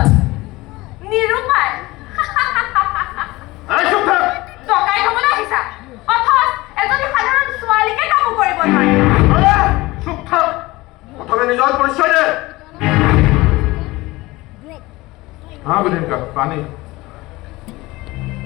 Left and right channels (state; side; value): quieter; right; 20.4 dB